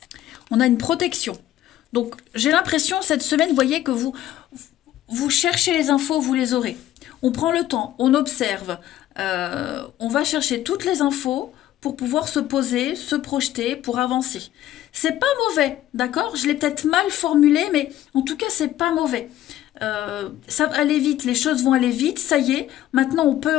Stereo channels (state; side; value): quieter; right; 13.2 dB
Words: On a une protection. Donc, j'ai l'impression, cette semaine, vous voyez que vous cherchez les infos, vous les aurez. On prend le temps, on observe, on va chercher toutes les infos pour pouvoir se poser, se projeter, pour avancer. C'est pas mauvais, d'accord? Je l'ai peut-être mal formulé, mais en tout cas, c'est pas mauvais. Ça va aller vite, les choses vont aller vite, ça y est. Maintenant, on